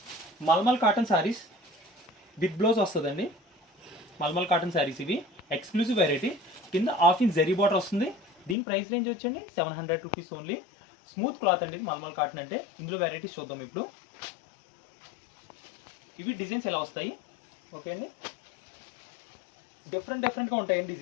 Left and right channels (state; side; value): drops out; right; at 8.6 s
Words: mulmul cotton sarees with blouse వస్తుందండి. మల్మల్ కాటన్ సారీస్ ఇవి ఎక్స్క్లూజివ్ వెరైటీ. కింద హాఫ్ ఇంచ్ జరీ బార్డర్ వస్తుంది. దీని ప్రైస్ రేంజ్ వచ్చండి 700 రూపీస్ ఓన్లీ. స్మూత్ క్లాత్ అండి ఇది మల్మల్ కాటన్ అంటే. ఇందులో వెరైటీస్ చూద్దాం ఇప్పుడు. ఇవి డిజైన్స్ ఎలా వస్తాయి. ఓకే అండి, డిఫరెంట్గా ఉంటాయండి